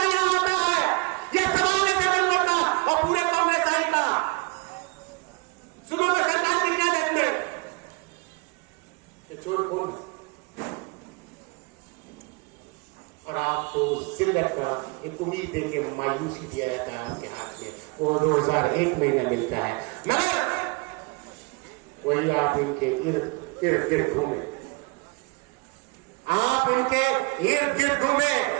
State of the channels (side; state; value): left; quieter; 29.9 dB